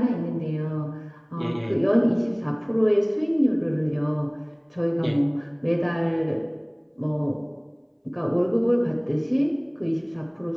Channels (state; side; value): identical; both; correlation 1.00